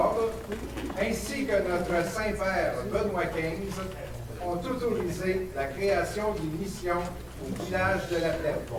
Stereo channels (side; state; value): both; identical; correlation 1.00